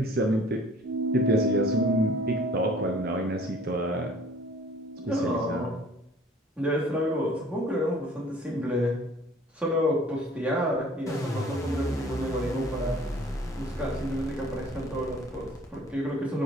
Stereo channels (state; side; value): normal; both; correlation 0.52